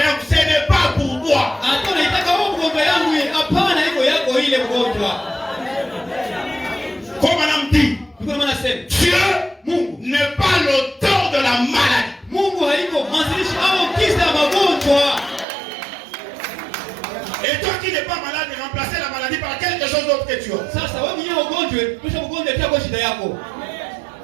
ce n'est pas pour toi. Hata unaitaka wewe mgonjwa yangu, hapana, iko yako ile mgonjwa. Comme madame dit, Dieu n'est pas l'auteur de la maladie. Mungu haiko mwanzilishi au kisa magonjwa. Et toi qui n'es pas malade, remplacer la maladie par quelque chose d'autre que tu as. Sasa wewe mwenyewe ugonjwe, kisha ugonjwe itakuwa shida yako.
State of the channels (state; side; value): drops out; left; at 15.5 s